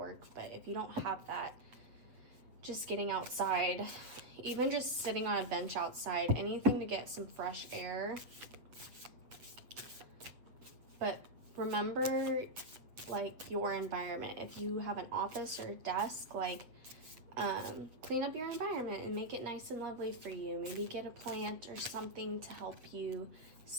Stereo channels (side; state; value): left; late; 8.1 ms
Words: But if you don't have that, just getting outside, even just sitting on a bench outside, anything to get some fresh air. But remember, like, your environment. If you have an office or a desk, like, clean up your environment and make it nice and lovely for you. Maybe get a plant or something to help you